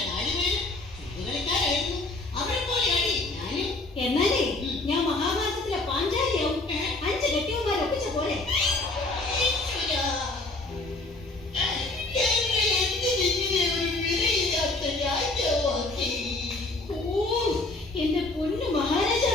എന്നാലേ ഞാൻ മഹാഭാരതത്തിലെ പാഞ്ചാലിയാവും. 5 കെട്ടിയവന്മാരെ ഒപ്പിച്ച പോലെ. എന്റെ പൊന്നു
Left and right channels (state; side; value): quieter; right; 3.0 dB